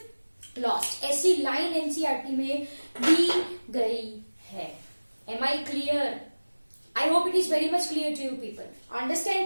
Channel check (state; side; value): inverted; both; correlation -1.00